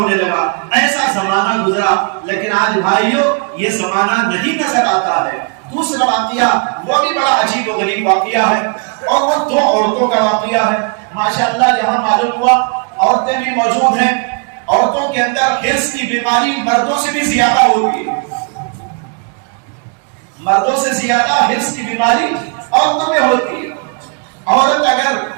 لگا۔ ایسا زمانہ گزرا، لیکن آج بھائیوں یہ زمانہ نہیں نظر آتا ہے۔ دوسرا واقعہ وہ بھی بڑا عجیب و غریب واقعہ ہے، اور وہ دو عورتوں کا واقعہ ہے۔ ماشاءاللہ یہاں معلوم ہوا عورتیں بھی موجود ہیں۔ عورتوں کے اندر حرص کی بیماری مردوں سے بھی زیادہ ہوتی ہے، مردوں سے زیادہ حرص کی بیماری عورتوں میں ہوتی ہے۔ مرد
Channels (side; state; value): left; quieter; 34.5 dB